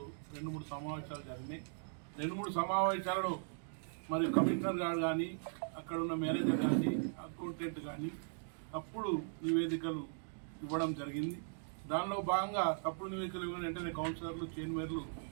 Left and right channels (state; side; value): silent; left; digital silence